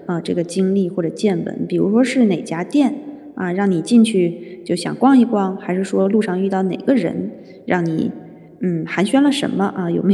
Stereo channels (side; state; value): both; identical; correlation 1.00